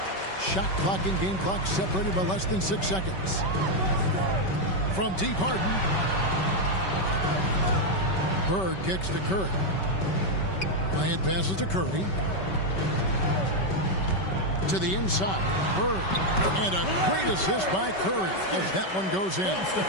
Shot clock and game clock separated by less than 6 seconds. From deep, Harden. Bird kicks to Curry. Bryant passes to Curry. To the inside, Bird. And a great assist by Curry as that one goes in.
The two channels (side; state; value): right; late; 5.3 ms